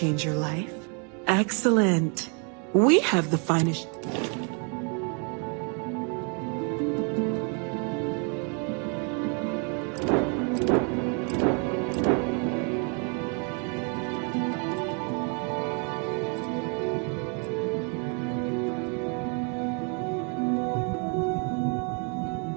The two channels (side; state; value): left; quieter; 37.4 dB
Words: your life? Excellent. We have the finest...